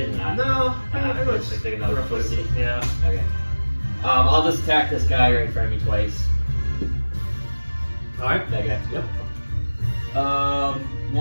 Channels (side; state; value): both; inverted; correlation -1.00